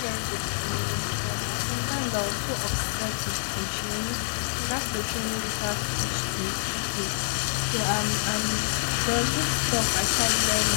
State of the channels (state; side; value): silent; right; digital silence